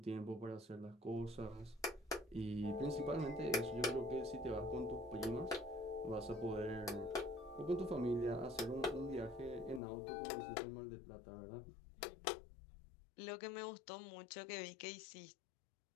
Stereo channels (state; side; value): drops out; right; at 9.8 s